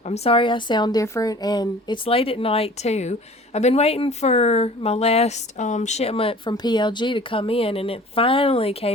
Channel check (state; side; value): normal; both; correlation 0.46